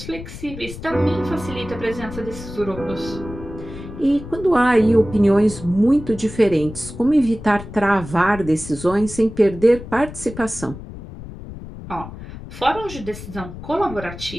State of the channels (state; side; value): noise; left; rumble, 12 dB below the sound